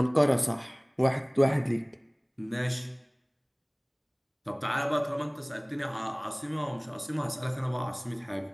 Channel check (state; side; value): identical; both; correlation 1.00